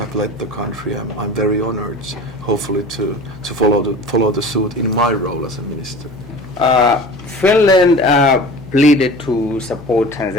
led the country. I'm very honored, hopefully, to follow the suit in my role as a minister. Finland pleaded to support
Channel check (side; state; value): left; noise; hum, 19 dB below the sound